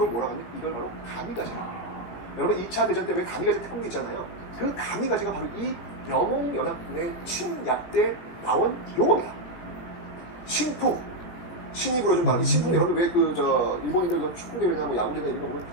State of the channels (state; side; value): late; right; 18 ms